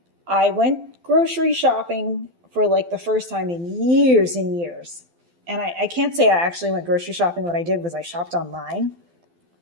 I went grocery shopping for like the first time in years and years. And I can't say I actually went grocery shopping. What I did was I shopped online.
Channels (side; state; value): left; late; 12 ms